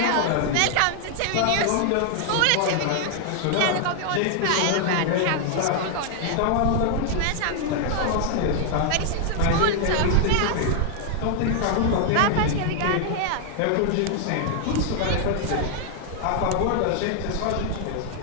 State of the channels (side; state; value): both; different; correlation 0.00